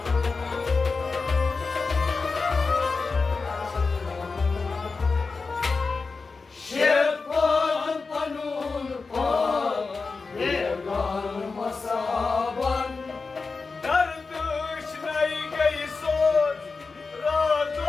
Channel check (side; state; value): right; quieter; 4.3 dB